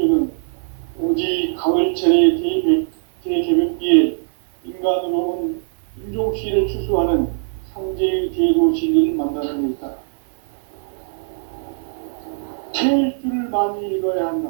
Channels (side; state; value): left; silent; digital silence